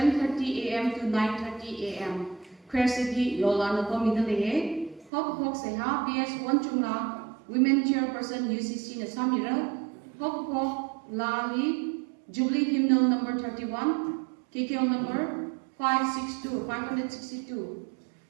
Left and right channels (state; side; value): drops out; left; at 5.1 s